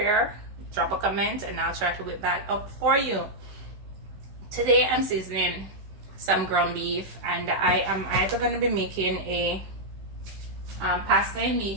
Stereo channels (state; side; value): late; left; 16 ms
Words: drop a comment and I'll try to whip that up for you. Today I'm seasoning some ground beef, and I am either going to be making a pasta and